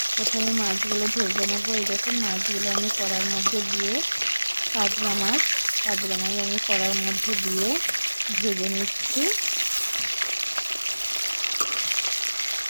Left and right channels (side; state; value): both; inverted; correlation -1.00